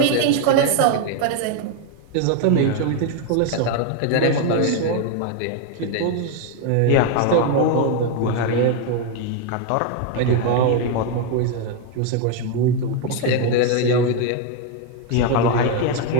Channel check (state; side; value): different; both; correlation 0.01